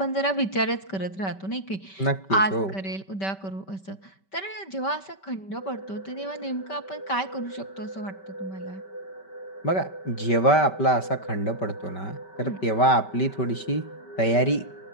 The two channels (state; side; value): late; right; 5.2 ms